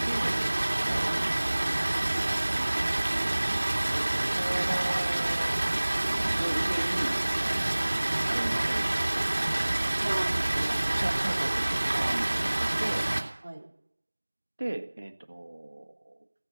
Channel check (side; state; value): both; inverted; correlation -1.00